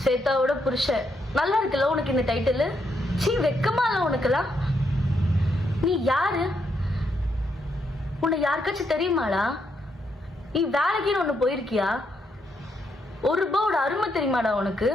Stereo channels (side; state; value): both; normal; correlation 0.78